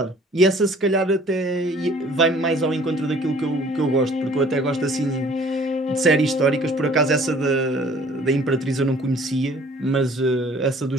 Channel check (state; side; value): normal; both; correlation 0.54